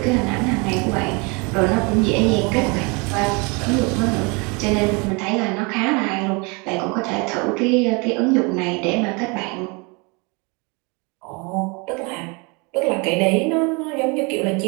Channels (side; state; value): left; quieter; 29.9 dB